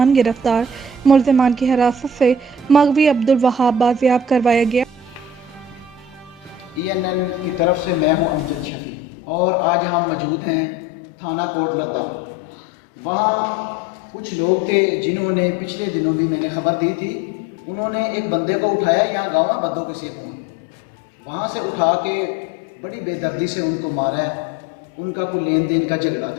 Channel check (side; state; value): right; drops out; at 8.7 s